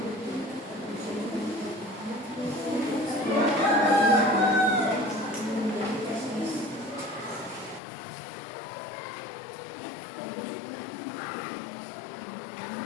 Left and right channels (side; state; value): right; drops out; at 7.8 s